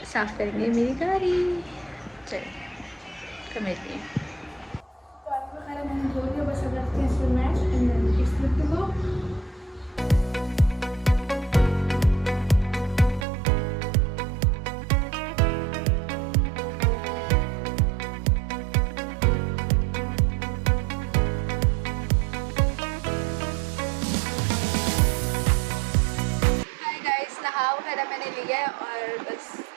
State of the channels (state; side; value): drops out; left; at 13.2 s